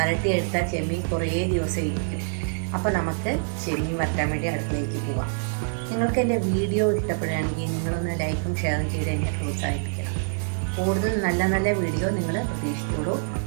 ചെമ്മീൻ കുറേ ദിവസം ഇരിക്കും. അപ്പോൾ നമുക്ക് ചെമ്മീൻ വരട്ടാൻ വേണ്ടി അടുക്കളയിലേക്ക് പോവാം. നിങ്ങൾക്ക് എൻ്റെ വീഡിയോ ഇഷ്ടപ്പെടുകയാണെങ്കിൽ നിങ്ങളൊന്ന് ലൈക്കും ഷെയറും ചെയ്ത് എന്നെ പ്രോത്സാഹിപ്പിക്കണം. കൂടുതൽ നല്ല നല്ല വീഡിയോ നിങ്ങൾ പ്രതീക്ഷിച്ചോളൂ.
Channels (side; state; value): left; silent; digital silence